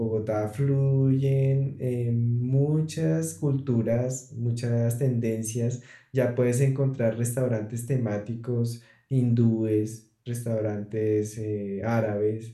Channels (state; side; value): identical; both; correlation 1.00